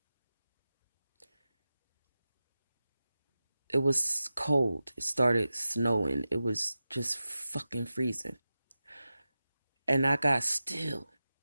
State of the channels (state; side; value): inverted; both; correlation -0.94